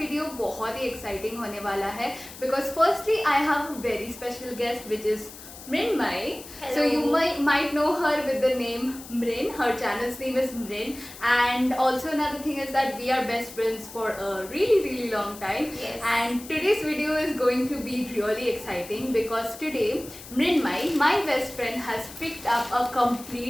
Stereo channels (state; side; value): noise; left; hiss, 16 dB below the sound